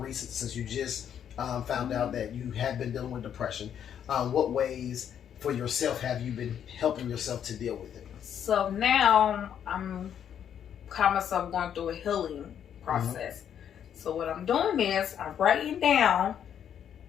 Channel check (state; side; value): quieter; right; 9.0 dB